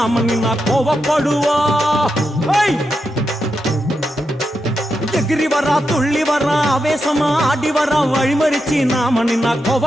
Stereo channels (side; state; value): both; normal; correlation 0.86